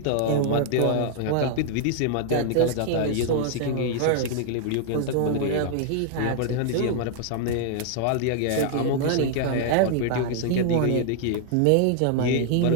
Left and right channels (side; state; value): both; different; correlation 0.00